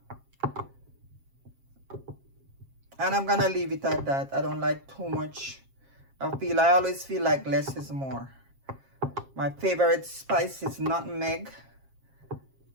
And I'm gonna leave it at that. I don't like too much. I always feel like less is more. My favorite spice is nutmeg,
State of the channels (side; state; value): left; late; 7.4 ms